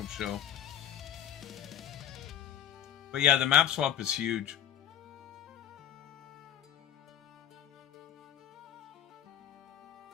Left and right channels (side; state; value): right; quieter; 10.0 dB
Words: show. But yeah, the map swap is huge.